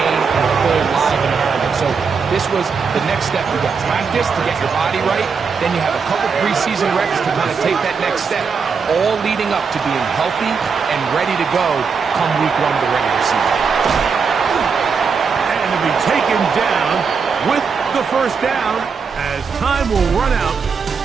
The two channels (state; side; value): quieter; left; 5.6 dB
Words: in a full live environment. So this was the next step. You got practice to get your body right. Then you have a couple preseason reps to kind of take that next step, all leading up to being healthy and ready to go come week one of the regular season. And to be taken down with the first down as time will run out